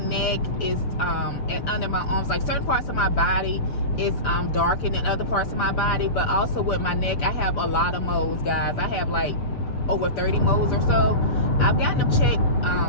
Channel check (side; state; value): right; late; 7.0 ms